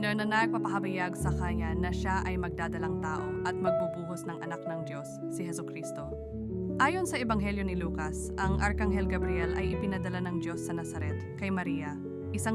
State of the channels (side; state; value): both; identical; correlation 1.00